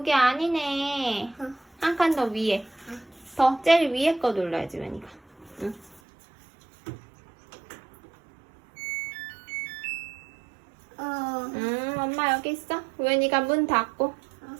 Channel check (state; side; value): drops out; left; at 6.0 s